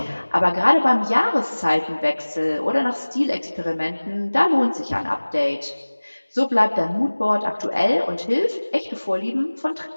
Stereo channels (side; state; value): both; inverted; correlation -1.00